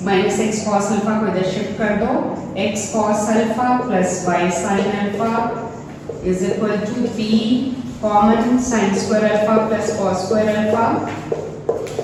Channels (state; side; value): identical; both; correlation 1.00